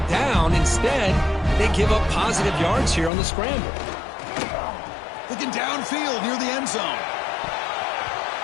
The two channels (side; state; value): right; drops out; at 3.1 s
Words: down. Instead, they give up positive yards here on the scramble. Looking downfield near the end zone.